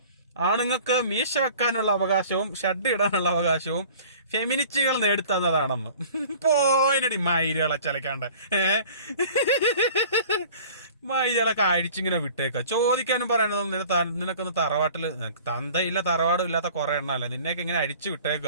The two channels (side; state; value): both; inverted; correlation -0.46